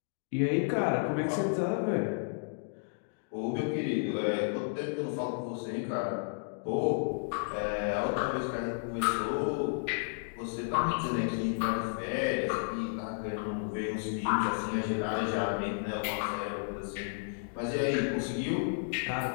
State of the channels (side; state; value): right; silent; digital silence